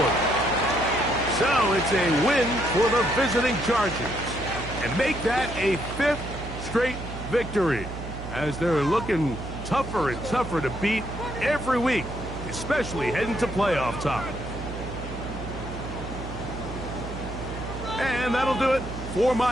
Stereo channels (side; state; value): right; noise; hum, 9 dB below the sound